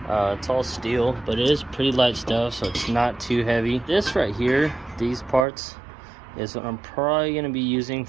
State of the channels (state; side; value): drops out; left; at 5.5 s